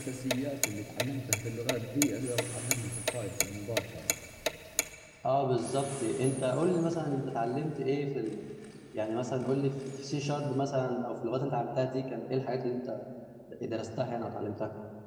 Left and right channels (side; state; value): both; identical; correlation 1.00